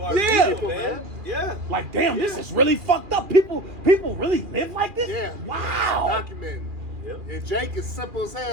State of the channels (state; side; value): late; left; 2.4 ms